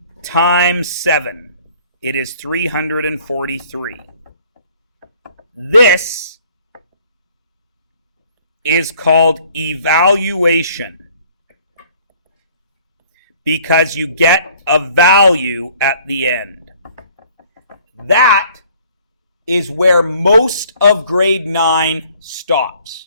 times 7. It is 343. This is called evaluation. Because you get a value at the end. That is where most of grade 9 stops.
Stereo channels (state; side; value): inverted; both; correlation -0.57